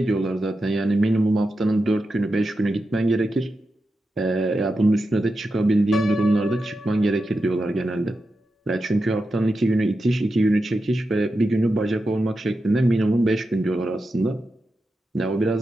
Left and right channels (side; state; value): both; normal; correlation 0.90